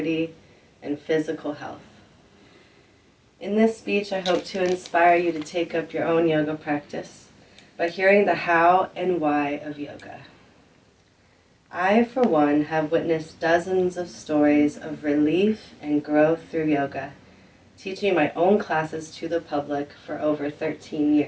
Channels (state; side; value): identical; both; correlation 1.00